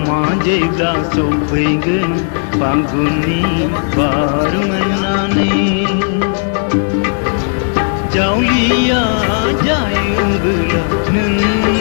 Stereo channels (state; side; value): silent; right; 58 dB below the other